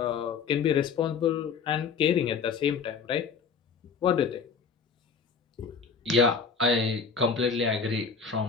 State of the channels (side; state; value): right; quieter; 5.7 dB